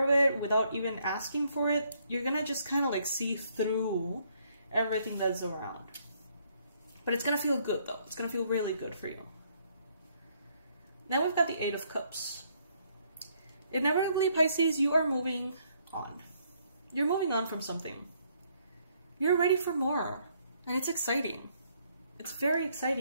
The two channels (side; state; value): both; inverted; correlation -0.70